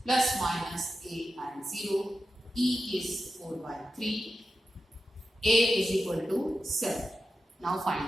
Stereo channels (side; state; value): both; normal; correlation 0.91